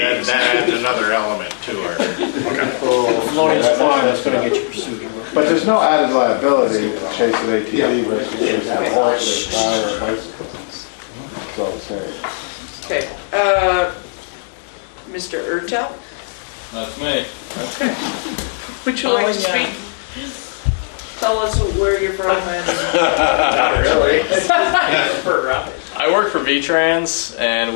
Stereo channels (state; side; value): silent; right; digital silence